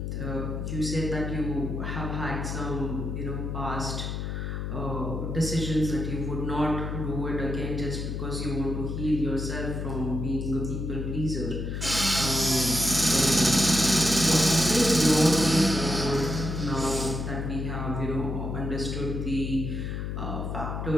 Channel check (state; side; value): noise; left; hum, 3 dB below the sound